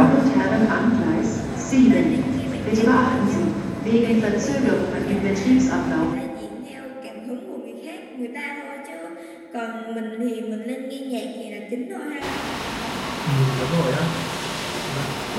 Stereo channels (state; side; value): identical; both; correlation 1.00